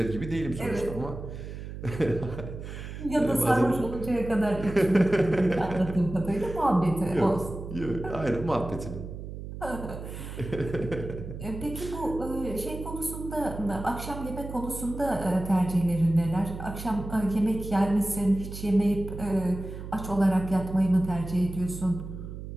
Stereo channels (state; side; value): noise; right; hum, 9 dB below the sound